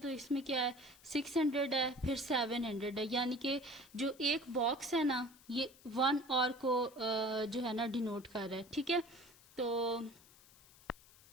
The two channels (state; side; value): noise; left; hiss, 25 dB below the sound